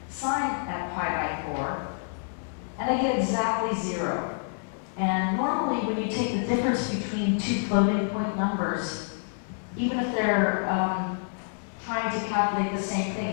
sine at pi by 4, and I get exactly 0. And normally when you take the difference between two floating point numbers, even if they're trying to calculate the same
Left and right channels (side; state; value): right; silent; digital silence